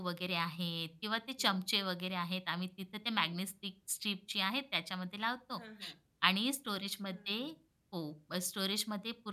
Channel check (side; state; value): both; identical; correlation 1.00